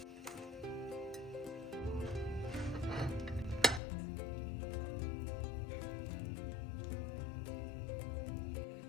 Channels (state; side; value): drops out; right; at 3.8 s